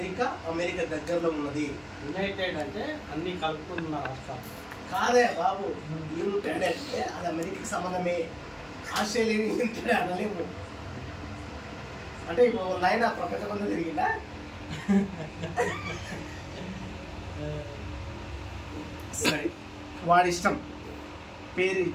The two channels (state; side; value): identical; both; correlation 1.00